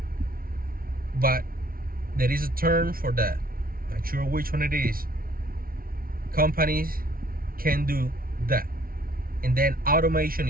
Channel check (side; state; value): left; late; 0.43 ms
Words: But there is a term for that. Not sure which one it is. Companies can do that, and then automation